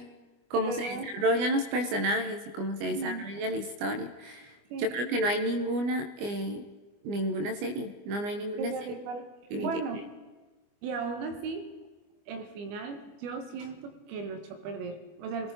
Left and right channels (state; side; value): late; left; 25 ms